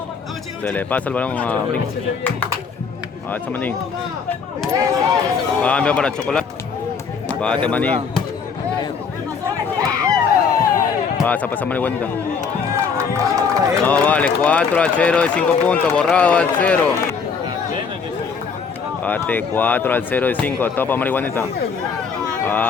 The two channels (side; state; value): right; quieter; 5.8 dB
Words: Se le pasa el balón a brinca. Alza maní. Cambio para chocolate. Bate maní. Pasa marihuanita. No vale, 4 al 0 de 5 puntos, borrado al 0. Bate 4 al 0 de 5, topa marihuanita.